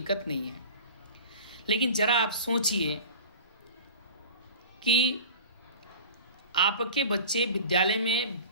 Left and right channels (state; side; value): inverted; both; correlation -0.38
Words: नहीं है, लेकिन ज़रा आप सोचिए कि आपके बच्चे विद्यालय में